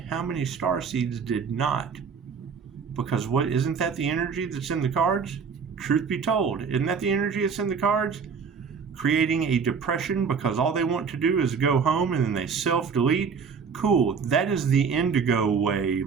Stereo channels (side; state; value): left; quieter; 5.9 dB